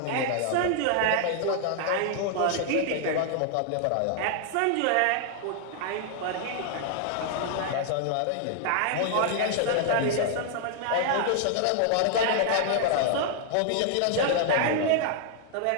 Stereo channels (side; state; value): both; different; correlation 0.00